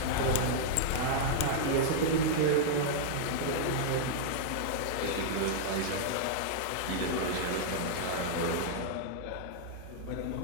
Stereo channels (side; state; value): both; different; correlation -0.02